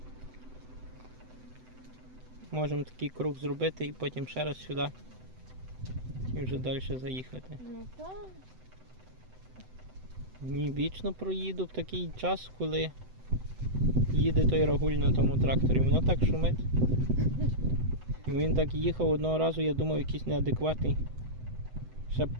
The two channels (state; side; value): late; left; 7.9 ms